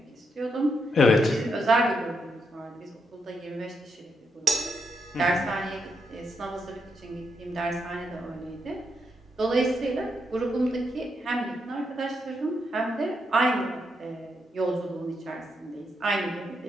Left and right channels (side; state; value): both; normal; correlation 0.80